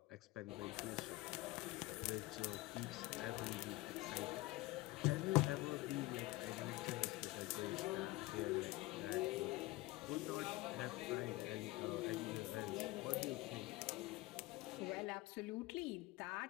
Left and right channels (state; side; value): quieter; right; 20.0 dB